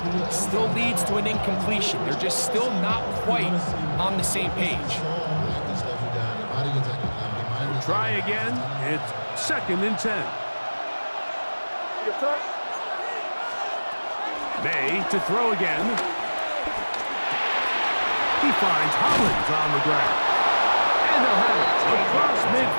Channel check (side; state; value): both; inverted; correlation -1.00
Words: still leads to an incompletion. They're just still not quite on the same page. Try again. It's second and 10. May to throw again. He finds Hollins on the ground. And they'll have it across